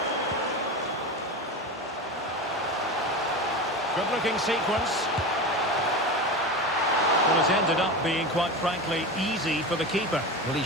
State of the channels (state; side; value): normal; both; correlation 0.25